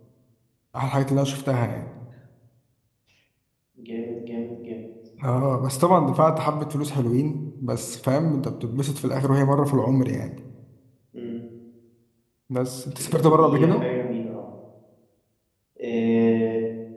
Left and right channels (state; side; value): identical; both; correlation 1.00